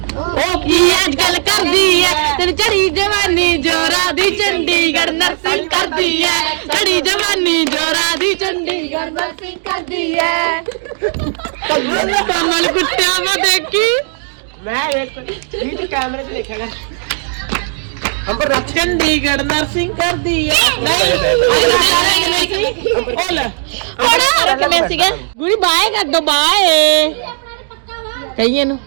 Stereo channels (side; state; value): left; silent; 58 dB below the other